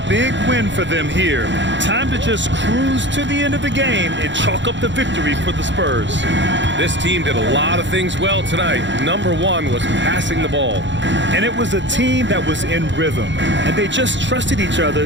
big win for them here. Time to just cruise to the end of the game and chalk up the victory for the Spurs. This team did a lot of things well tonight. Number 1 was passing the ball. And it was a team that was in rhythm. And they just trusted each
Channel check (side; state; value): left; late; 0.53 ms